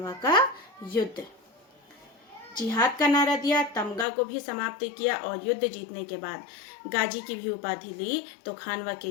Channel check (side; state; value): right; drops out; at 4.0 s